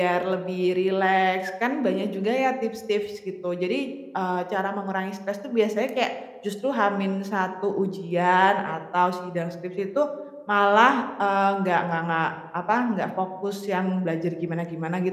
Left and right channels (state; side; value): identical; both; correlation 1.00